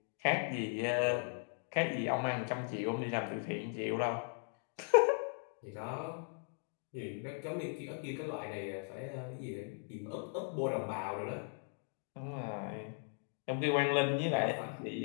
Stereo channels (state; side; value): silent; right; 52 dB below the other